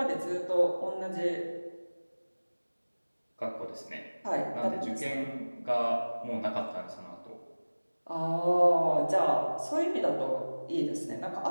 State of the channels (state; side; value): inverted; both; correlation -1.00